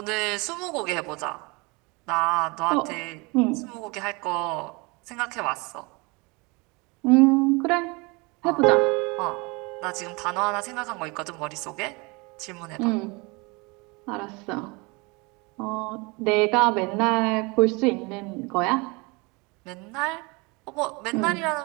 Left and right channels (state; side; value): quieter; left; 27.5 dB